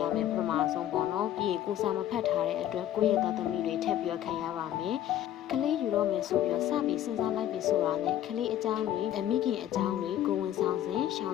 မယ်ပထမဆုံးပေါ့နော်ပြီးရင်ကိုစာမဖတ်ထားတဲ့အတွက်ကိုယ့်ရဲ့သားသမီးတွေထပ်ပြီးခံရပါမယ်ကလေးယူတော့မယ်ဆိုပြီးတော့စပြီးစဉ်းစားလိုက်ပြီဆိုတာနဲ့ကလေးအကြောင်းတွေအမိခင်အကြောင်းတွေကိုဝန်ဆောင်စဉ်ရှောင်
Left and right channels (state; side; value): quieter; right; 11.8 dB